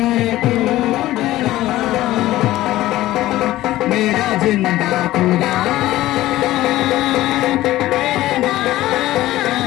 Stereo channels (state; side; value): quieter; right; 15.8 dB